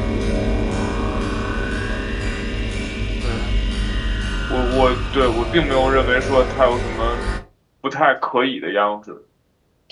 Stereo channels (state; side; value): identical; both; correlation 1.00